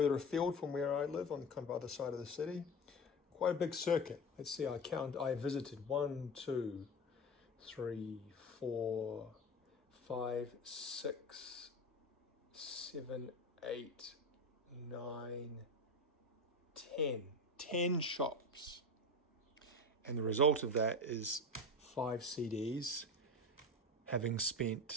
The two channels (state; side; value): normal; both; correlation 0.25